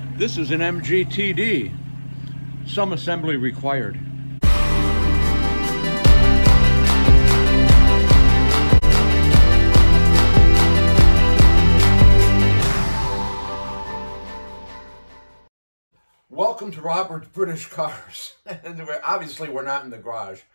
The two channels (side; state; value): both; inverted; correlation -1.00